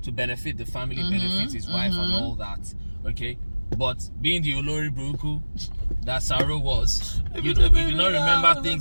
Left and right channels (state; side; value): inverted; both; correlation -1.00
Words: to benefit the family, benefit his wife and all that. Okay? But being the Olori Buruku that Saro was, you know, we do not remember